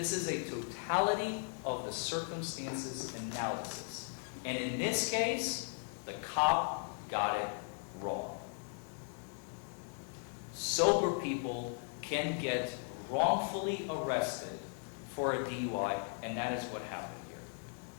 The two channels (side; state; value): right; silent; 53 dB below the other